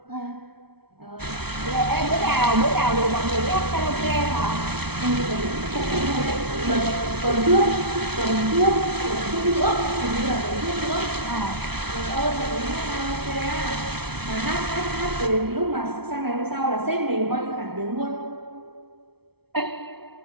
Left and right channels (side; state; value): left; late; 0.97 ms